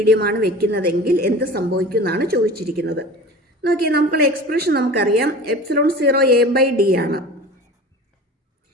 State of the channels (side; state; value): both; normal; correlation 0.37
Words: വെക്കുന്നതെങ്കിൽ എന്ത് സംഭവിക്കും എന്നാണ് ചോദിച്ചിരിക്കുന്നത്. നോക്കിയാൽ നമുക്കുള്ള എക്സ്പ്രഷൻ നമുക്കറിയാം, എപ്സിലോൺ 0 എ ബൈ ഡി ആണ്.